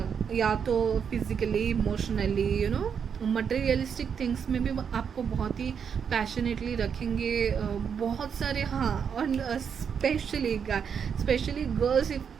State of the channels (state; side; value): quieter; left; 7.1 dB